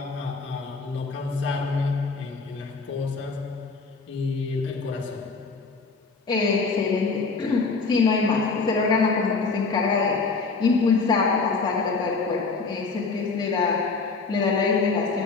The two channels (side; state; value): right; quieter; 4.3 dB